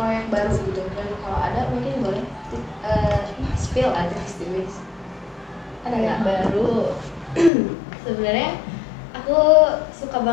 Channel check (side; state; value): right; drops out; at 7.5 s